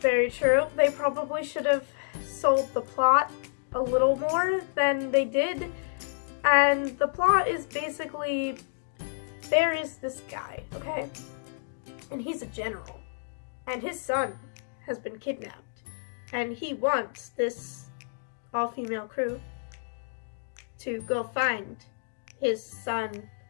true, they probably should have sold the plot a little more than they did. And the plot is basically, there is this guy, okay? And he's a general. And his son has been kidnapped. And he wants this all-female crew to go find his son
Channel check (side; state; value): right; silent; digital silence